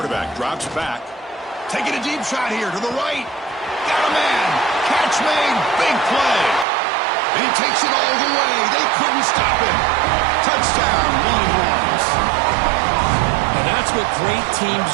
drops back. Taking a deep shot here to the right. Got a man. Catch made. Big play. And he takes it all the way. They couldn't stop him. Touchdown, Longhorns. And that's what great teams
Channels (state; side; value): drops out; left; at 6.7 s